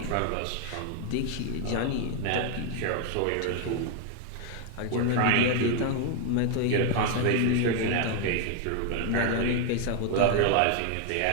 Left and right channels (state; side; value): different; both; correlation 0.01